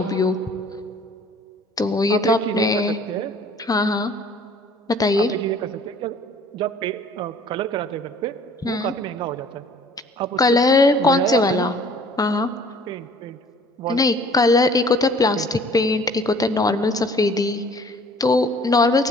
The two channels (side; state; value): both; normal; correlation 0.53